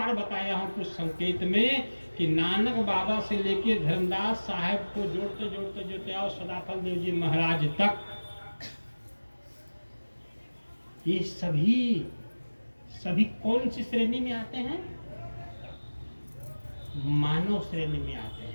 बताया हूं कुछ संकेत में, कि नानक बाबा से लेके धर्मदास साहब को जोड़ते जोड़ते जोड़ते आओ सदाफल देव जी महाराज तक, ये सभी कौन सी श्रेणी में आते हैं? मानव श्रेणी में आते हैं।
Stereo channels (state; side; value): inverted; both; correlation -1.00